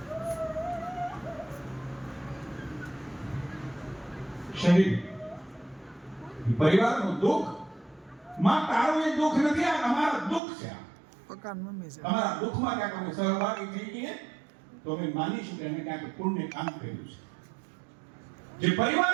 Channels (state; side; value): drops out; left; at 10.4 s